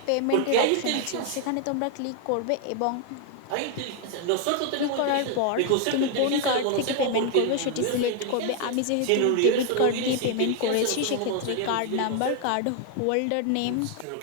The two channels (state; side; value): different; both; correlation 0.00